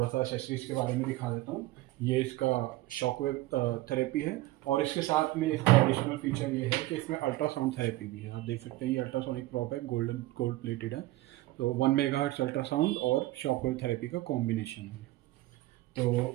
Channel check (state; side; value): quieter; left; 18.1 dB